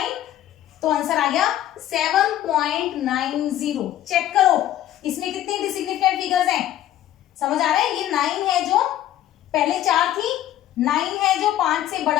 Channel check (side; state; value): right; quieter; 12.6 dB